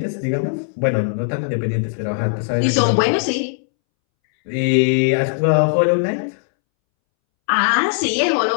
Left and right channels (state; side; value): silent; right; 65 dB below the other